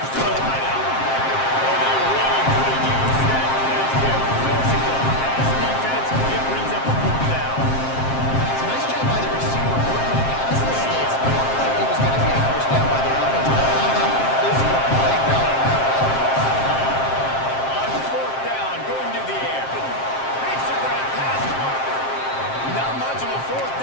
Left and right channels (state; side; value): late; right; 7.6 ms